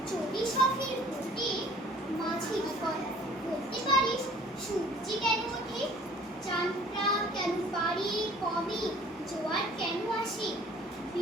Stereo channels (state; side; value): normal; both; correlation 0.52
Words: চটি শখের ভোটে মাঝি কর বলতে পারিস সূর্যি কেন ওঠে, চাঁদটা কেন পারি কমে, জোয়ার কেন আসে।